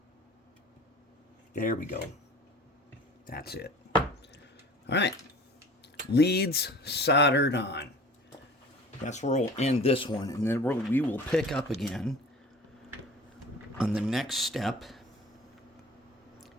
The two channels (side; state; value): both; normal; correlation 0.42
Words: There we go. That's it. All right. Leads soldered on. That's where we'll end this one, and then we will pick up again on the next step,